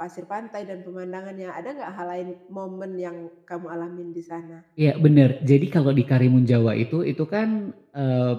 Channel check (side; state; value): both; identical; correlation 1.00